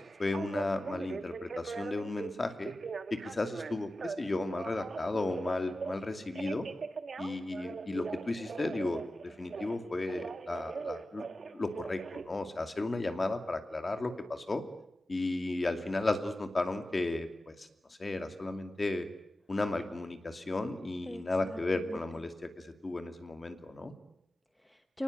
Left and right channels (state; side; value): normal; both; correlation 0.94